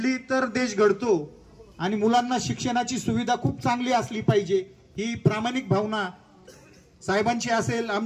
तर देश घडतो आणि मुलांना शिक्षणाची सुविधा खूप चांगली असली पाहिजे ही प्रामाणिक भावना साहेबांची असेल,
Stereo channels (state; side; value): identical; both; correlation 1.00